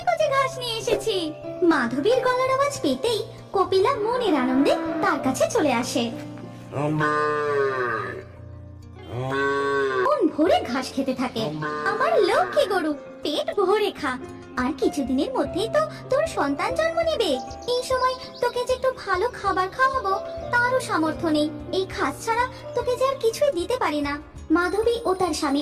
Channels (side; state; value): both; identical; correlation 1.00